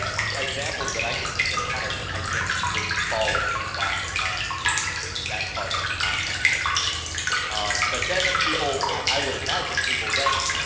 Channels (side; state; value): both; identical; correlation 1.00